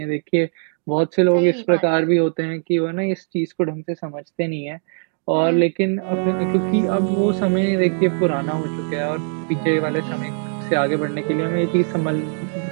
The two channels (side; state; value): left; silent; 56 dB below the other